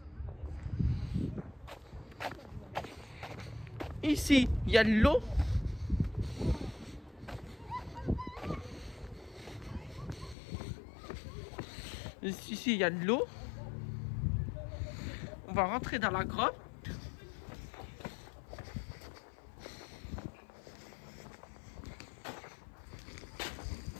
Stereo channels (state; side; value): drops out; right; at 10.4 s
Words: Ici, il y a de l'eau. Ici, il y a de l'eau. On va rentrer dans la grotte.